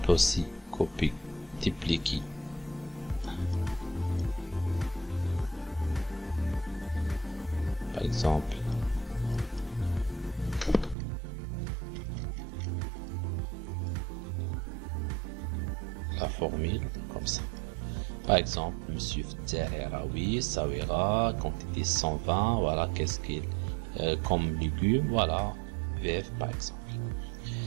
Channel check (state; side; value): drops out; left; at 11.0 s